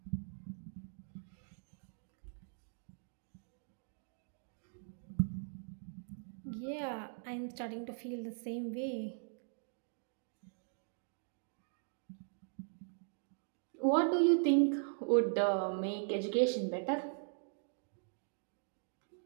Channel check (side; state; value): left; silent; digital silence